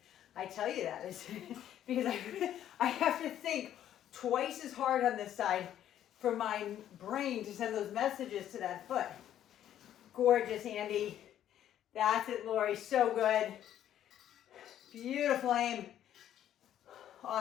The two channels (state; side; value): quieter; right; 11.1 dB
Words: I tell you that is because I have to think twice as hard on this side for my brain to send those messages to that foot. Gorgeous, Andy. That's it, Lori. So good. Beautiful aim.